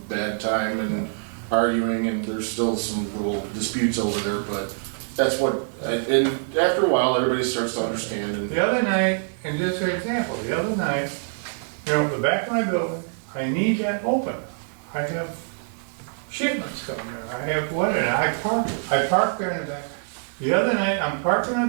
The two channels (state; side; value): silent; left; digital silence